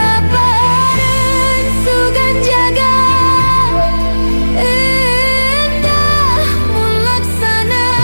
sugan jaga endah mun laksana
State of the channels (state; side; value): inverted; both; correlation -1.00